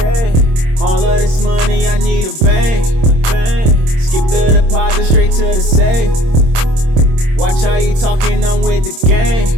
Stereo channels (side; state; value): left; late; 26 ms